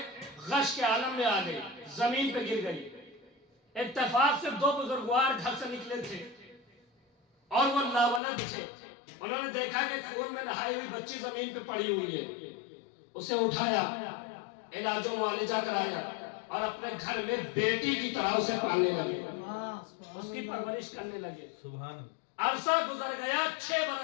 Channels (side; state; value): right; drops out; at 8.2 s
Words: غش کے عالم میں آ گئی، زمین پہ گر گئی۔ اتفاق سے دو بزرگوار گھر سے نکلے تھے اور وہ لاولد تھے۔ انہوں نے دیکھا کہ خون میں نہائی ہوئی بچی زمین پہ پڑی ہوئی ہے، اسے اٹھایا، علاج و معالجہ کرایا اور اپنے گھر میں بیٹی کی طرح اسے پالنے لگے، اس کی پرورش کرنے لگے۔ عرصہ گزر گیا 6